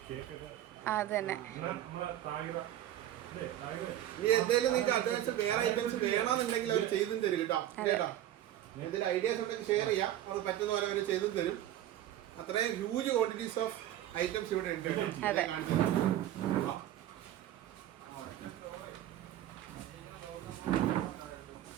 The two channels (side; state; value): left; quieter; 12.5 dB